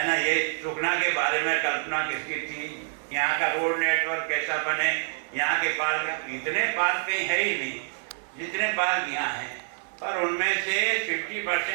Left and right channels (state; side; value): silent; left; 60 dB below the other